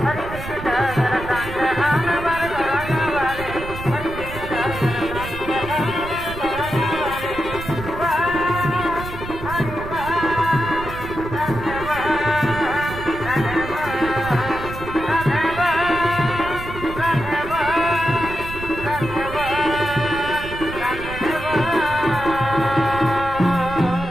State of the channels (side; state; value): right; noise; rumble, 10 dB below the sound